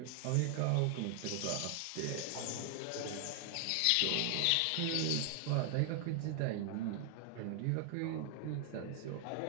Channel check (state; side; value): different; both; correlation 0.00